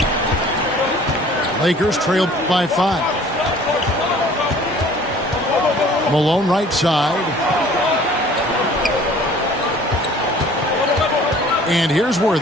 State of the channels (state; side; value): normal; both; correlation 0.51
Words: Lakers trail by 5. Malone right side. And here's